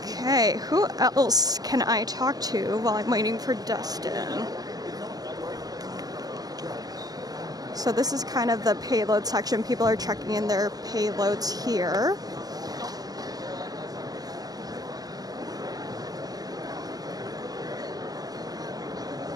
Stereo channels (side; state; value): left; late; 0.18 ms